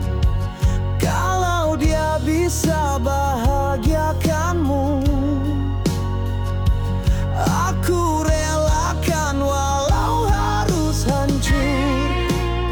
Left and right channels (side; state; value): both; identical; correlation 1.00